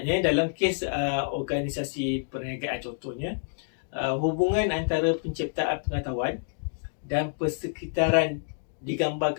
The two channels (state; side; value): silent; right; digital silence